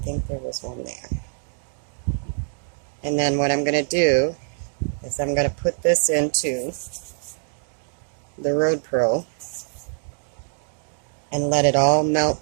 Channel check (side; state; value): left; silent; digital silence